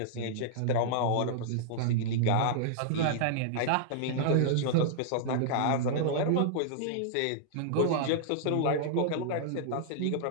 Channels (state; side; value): different; both; correlation -0.01